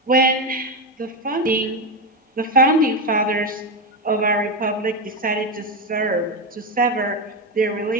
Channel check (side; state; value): both; normal; correlation 0.11